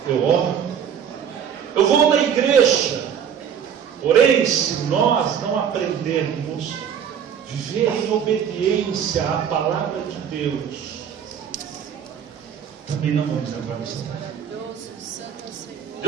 eu oro, eu vou na igreja. Porém, se nós não aprendermos viver em obediência à palavra de Deus, também não vamos entrar nessa terra.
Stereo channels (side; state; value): left; quieter; 8.2 dB